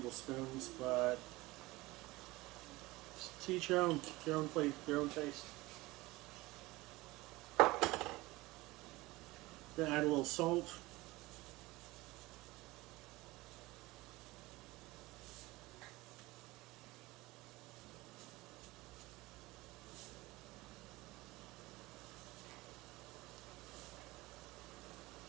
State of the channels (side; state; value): left; quieter; 20.6 dB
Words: but to each your own plate, your own taste. Gonna add a little salt.